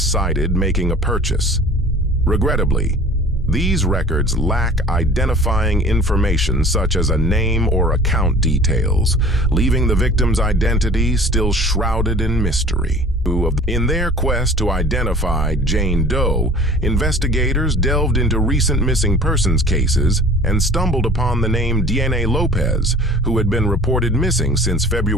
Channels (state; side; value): normal; both; correlation 0.45